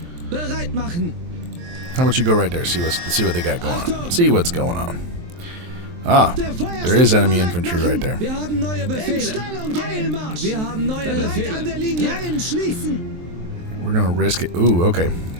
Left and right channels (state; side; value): late; left; 23 ms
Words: How about you go right there? See what they got going on. See what's going on. Ah, there is enemy infantry right there. We're gonna risk it. Ooh, okay.